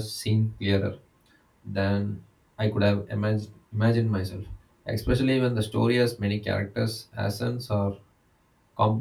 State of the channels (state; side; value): identical; both; correlation 1.00